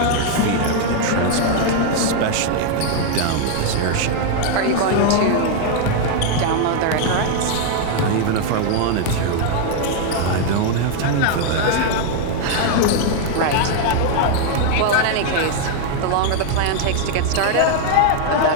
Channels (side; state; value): both; different; correlation 0.00